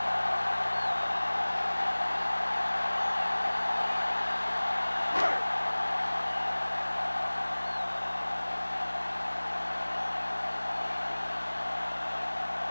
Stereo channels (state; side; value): inverted; both; correlation -1.00